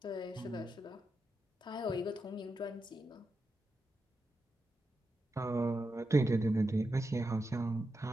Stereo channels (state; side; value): normal; both; correlation 0.88